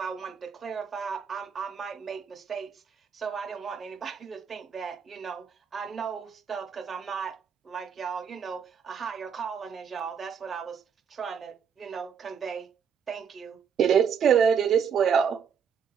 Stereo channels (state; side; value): quieter; left; 7.1 dB